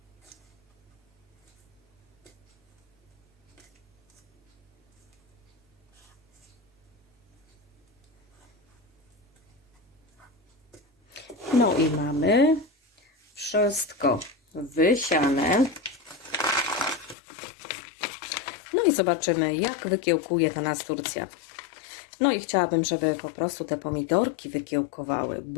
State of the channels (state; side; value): drops out; right; at 17.2 s